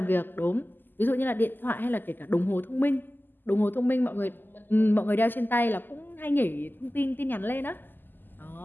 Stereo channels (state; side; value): late; right; 0.091 ms